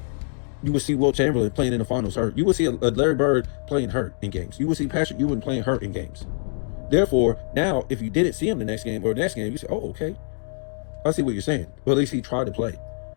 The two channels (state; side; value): silent; right; digital silence